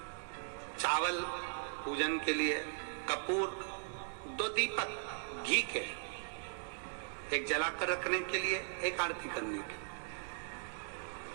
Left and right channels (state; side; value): silent; left; digital silence